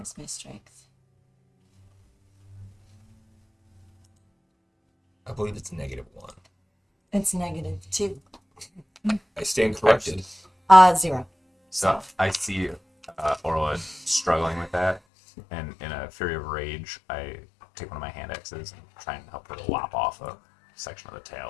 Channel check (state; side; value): drops out; right; at 15.0 s